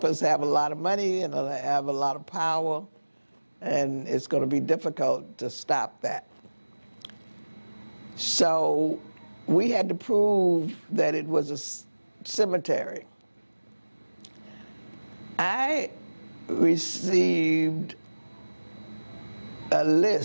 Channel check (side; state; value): both; inverted; correlation -1.00